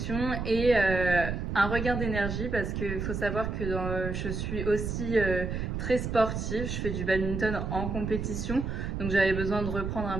et un regain d'énergie parce qu'il faut savoir que je suis aussi très sportive, je fais du badminton en compétition, donc j'avais besoin de reprendre un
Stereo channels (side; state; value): right; noise; rumble, 3 dB below the sound